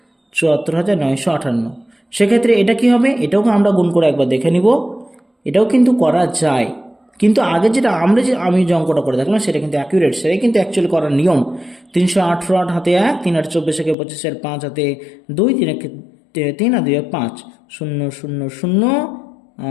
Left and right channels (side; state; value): right; drops out; at 14.0 s